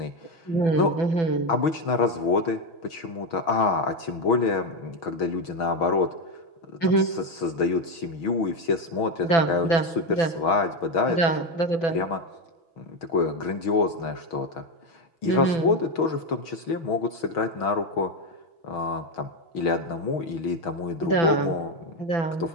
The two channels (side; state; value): right; late; 6.3 ms